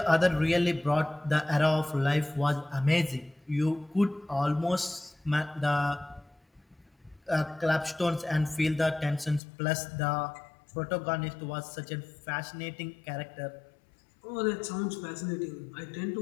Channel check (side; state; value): right; drops out; at 9.4 s